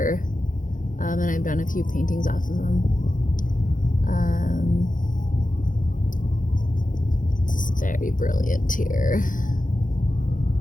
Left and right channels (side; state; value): right; late; 0.38 ms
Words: and I've done a few paintings off of them. It's very brilliant here.